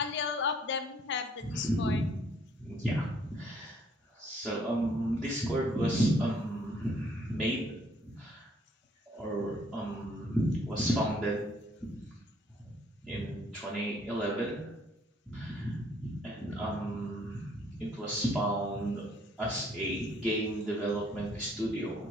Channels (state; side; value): normal; both; correlation 0.63